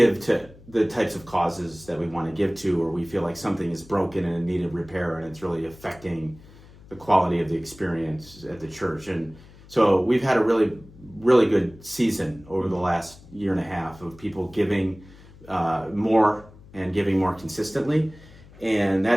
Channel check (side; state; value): left; noise; hum, 22 dB below the sound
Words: to the types of causes that we want to give to, or we feel like something is broken and in need of repair, and it's really affecting the quality of the experience at the church. And so we've had a really, really good season over the last year and a half of people giving more and giving more consistently. And